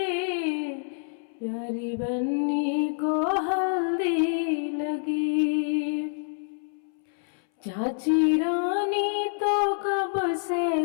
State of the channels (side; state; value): right; silent; 60 dB below the other